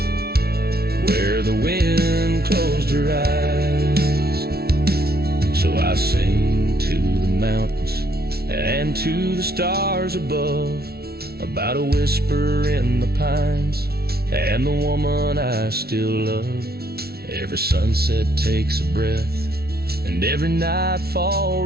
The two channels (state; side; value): late; left; 0.45 ms